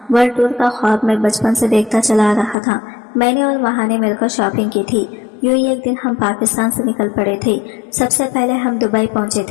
ورلڈ ٹور کا خواب میں بچپن سے دیکھتا چلا آ رہا تھا۔ میں نے اور مہا نے مل کر شاپنگ کی تھی۔ یوں ہی ایک دن ہم پاکستان سے نکل پڑے تھے۔ سب سے پہلے ہم دبئی پہنچے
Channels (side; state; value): right; drops out; at 2.6 s